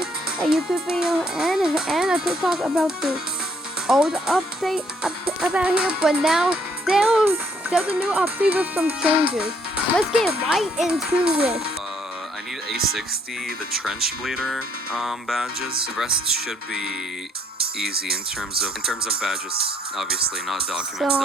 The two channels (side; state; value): both; normal; correlation 0.67